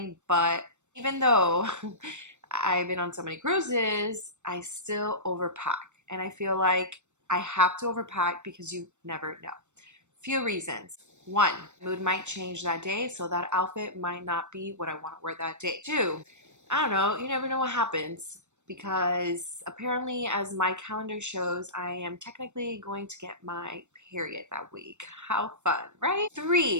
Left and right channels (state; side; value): late; left; 0.84 ms